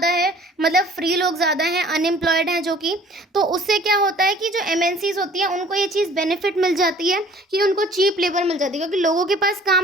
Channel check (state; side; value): normal; both; correlation 0.52